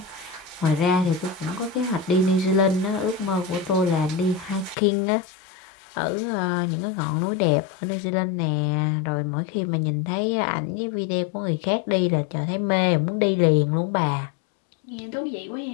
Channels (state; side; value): drops out; right; at 4.8 s